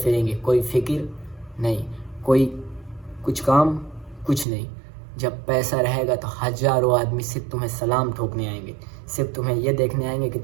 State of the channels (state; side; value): drops out; left; at 4.5 s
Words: گے، کوئی فکر نہیں، کوئی کچھ کام کچھ نہیں۔ جب پیسہ رہے گا تو ہزاروں آدمی صرف تمہیں سلام ٹھوکنے آئیں گے، صرف تمہیں یہ دیکھنے آئیں گے کہ